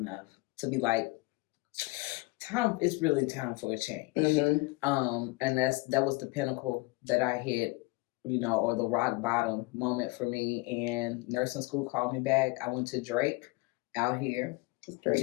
to be like, it's really time for a change. And that was the pinnacle that I hit, or the rock bottom moment for me. And nursing school called me back. I went to Drake out here.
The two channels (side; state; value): right; quieter; 24.3 dB